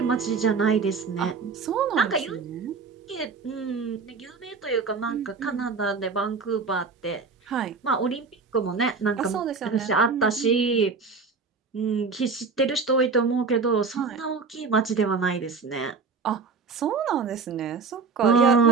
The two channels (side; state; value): left; quieter; 4.8 dB